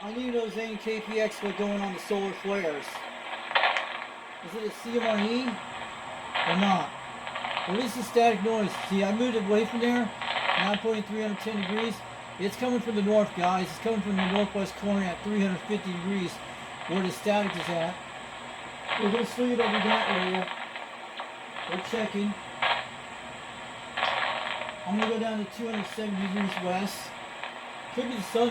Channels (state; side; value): identical; both; correlation 1.00